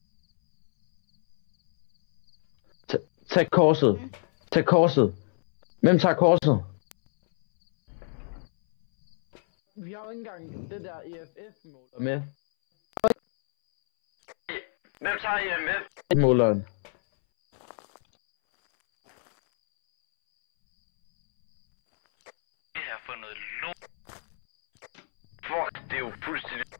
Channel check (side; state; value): right; silent; 61 dB below the other